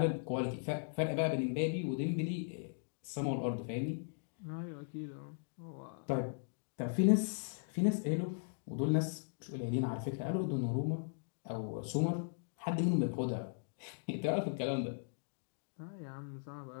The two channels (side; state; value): right; silent; digital silence